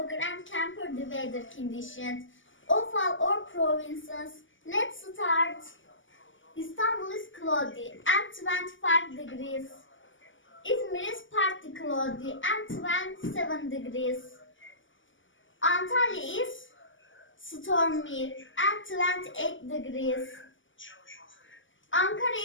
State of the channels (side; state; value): right; late; 0.56 ms